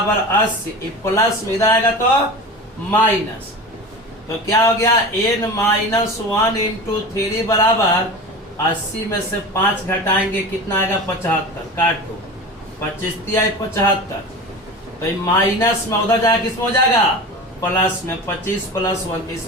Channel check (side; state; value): both; normal; correlation 0.32